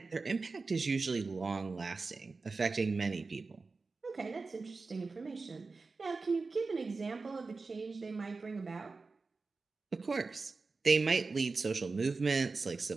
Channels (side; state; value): left; quieter; 4.0 dB